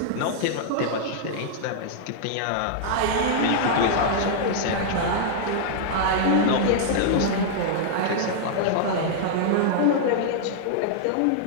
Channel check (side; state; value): both; different; correlation -0.01